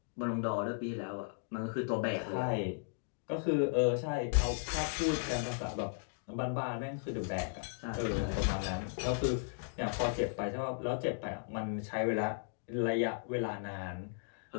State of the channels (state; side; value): silent; right; digital silence